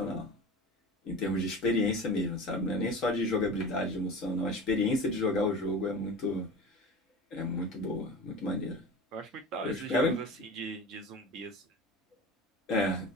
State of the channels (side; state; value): both; normal; correlation 0.34